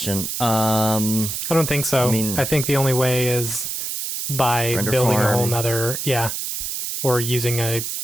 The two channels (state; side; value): noise; right; hiss, 4 dB below the sound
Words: I don't think so. I think the only way is by building a whole nother, or using a